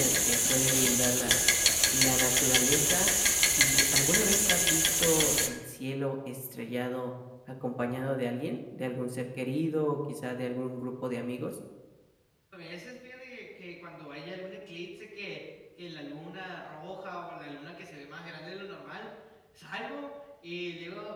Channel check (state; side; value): identical; both; correlation 1.00